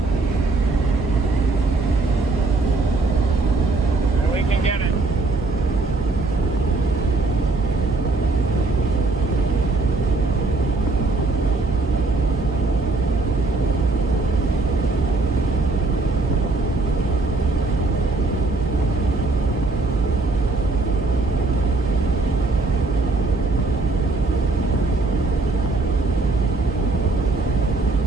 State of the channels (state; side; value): quieter; left; 3.5 dB